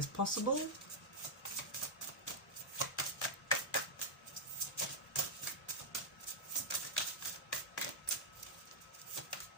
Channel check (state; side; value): normal; both; correlation -0.05